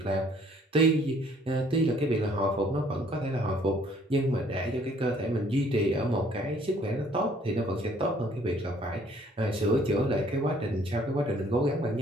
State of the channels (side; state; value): both; normal; correlation 0.60